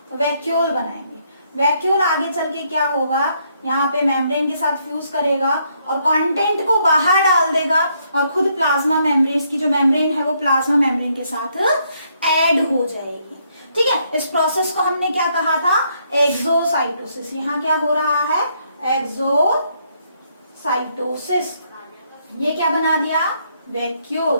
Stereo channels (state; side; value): inverted; both; correlation -0.72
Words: वैक्यूल बनाएंगे, वैक्यूल आगे चल के क्या होगा, यहाँ पे मेम्ब्रेन के साथ फ्यूज करेगा और कंटेंट को बाहर डाल देगा, और खुद प्लाज्मा मेम्ब्रेन की जो मेम्ब्रेन है वो प्लाज्मा मेम्ब्रेन के साथ ऐड हो जाएगी, ठीक है, इस प्रोसेस को हमने क्या कहा था, एक्सोसाइटोसिस, यहाँ क्या हो रहा है, एक्सोसाइटोसिस, ये क्या बना दिया,